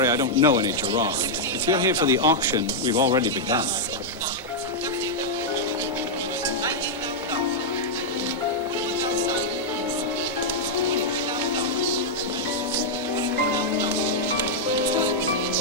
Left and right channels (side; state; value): left; noise; hum, 28 dB below the sound